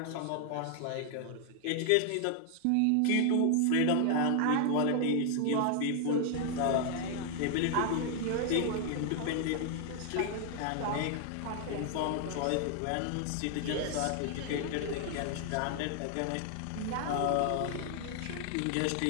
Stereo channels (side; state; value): both; different; correlation 0.00